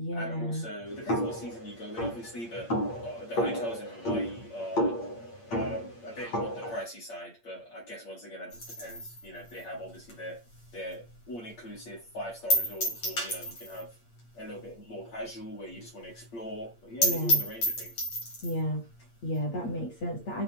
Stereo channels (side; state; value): right; late; 8.6 ms